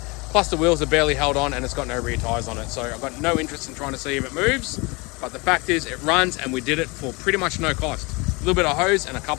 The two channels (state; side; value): quieter; right; 27.1 dB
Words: Plus the wheels are barely held on and it's got no rear tyres on it. So I've got no interest in trying to see if it moves. But the fact is it runs and we did it for pretty much no cost. A little bit of hose and a